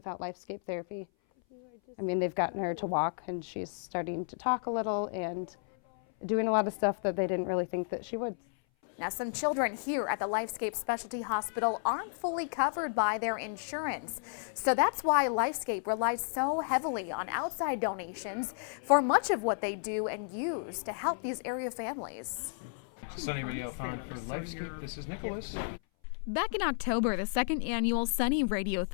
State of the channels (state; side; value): silent; right; 56 dB below the other